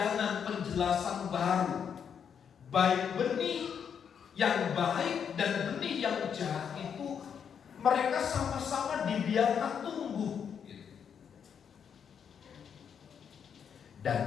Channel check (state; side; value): quieter; right; 7.5 dB